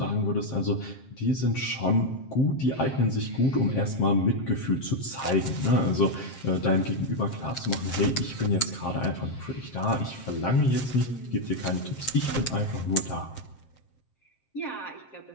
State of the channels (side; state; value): right; late; 7.6 ms